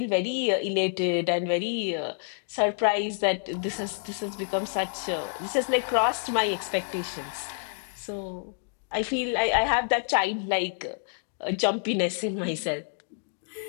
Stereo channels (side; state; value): right; silent; digital silence